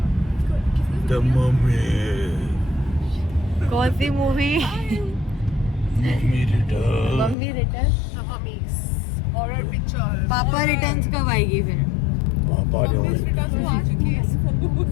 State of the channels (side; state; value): right; drops out; at 7.4 s